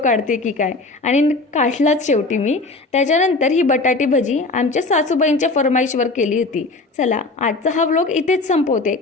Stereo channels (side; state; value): right; quieter; 3.4 dB